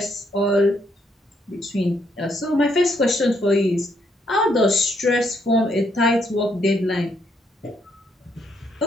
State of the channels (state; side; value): normal; both; correlation 0.73